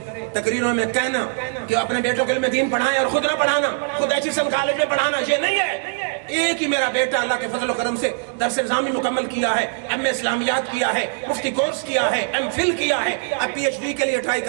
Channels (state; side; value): silent; left; digital silence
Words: تقریروں میں کہنا کہ اپنے بیٹوں کے علم دین پڑھائیں اور خود نہ پڑھانا, خود ایچیسن کالج میں پڑھانا, یہ نہیں ہے. ایک ہی میرا بیٹا اللہ کے فضل و کرم سے درس نظامی مکمل کیا ہے, ایم اے اسلامیات کیا ہے, مفتی کورس کیا ہے, ایم فل کیا ہے, اب پی ایچ ڈی کے لیے ٹرائی